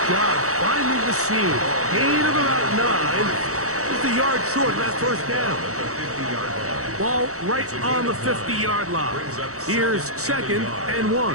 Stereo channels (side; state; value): left; late; 0.65 ms